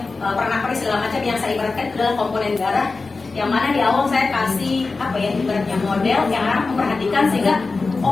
pernak-pernik segala macam yang saya ibaratkan itu adalah komponen darah. Yang mana di awal saya kasih ibaratnya model yang anak memperhatikan sehingga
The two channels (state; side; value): quieter; right; 3.9 dB